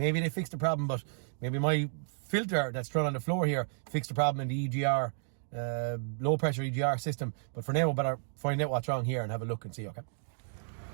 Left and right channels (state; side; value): silent; left; digital silence